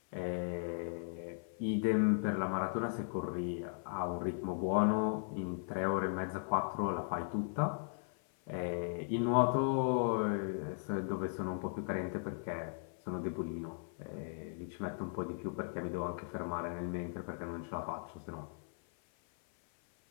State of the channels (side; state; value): right; silent; 53 dB below the other